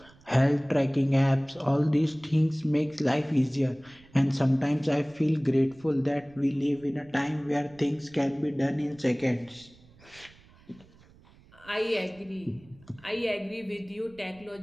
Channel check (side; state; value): right; noise; rumble, 26 dB below the sound